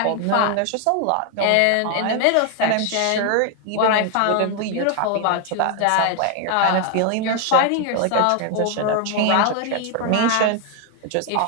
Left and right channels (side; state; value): both; different; correlation 0.00